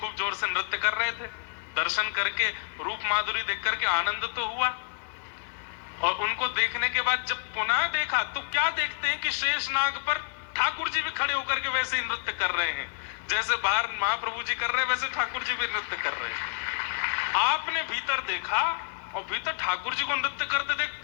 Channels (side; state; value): right; silent; digital silence